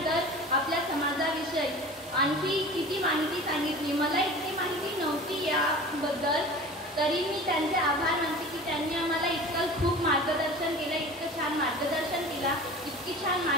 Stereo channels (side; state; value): both; normal; correlation 0.38